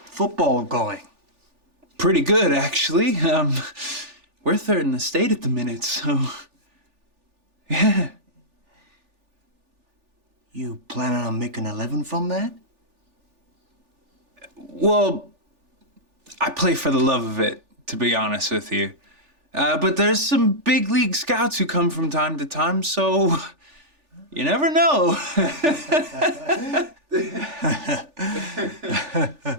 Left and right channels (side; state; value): left; late; 3.4 ms